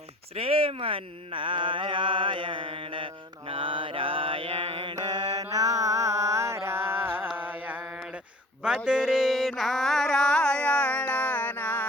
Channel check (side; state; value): both; normal; correlation 0.44